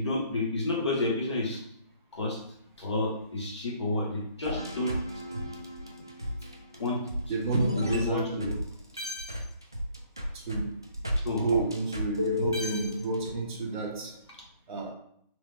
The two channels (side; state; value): both; inverted; correlation -0.61